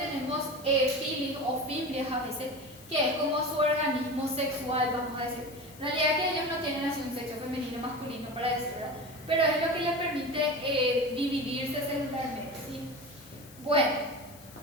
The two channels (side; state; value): left; noise; hiss, 21 dB below the sound